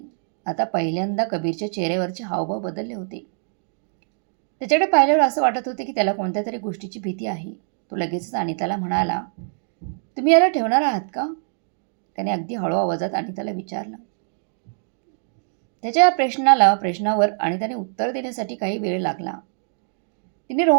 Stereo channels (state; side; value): silent; left; digital silence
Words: आता पहिल्यांदा कबीरच्या चेहऱ्यावरचे हावभाव बदलले होते. त्याच्याकडे पाहिल्यावर असं वाटत होते की त्याला कोणत्या तरी गोष्टीची भीती आहे. तो लगेचच अनिताला म्हणाला, तुम्ही याला ठेवणार आहात का? त्याने अगदी हळू आवाजात अनिताला विचारलं. त्याच्या या प्रश्नावर अनिताने उत्तर देण्यासाठी काही वेळ लागला. तिने